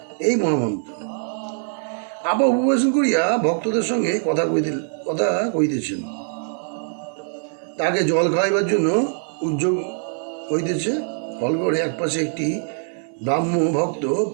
এই মহামন্ত্র আবার উপবেশন করিয়া ভক্তদের সঙ্গে কথা কইতেছেন। তাকে জল খাওয়াইবার জন্য উদ্যোগ হইতেছে। হলঘরে একপাশে একটি ব্রাহ্ম ভক্ত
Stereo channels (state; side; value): silent; left; digital silence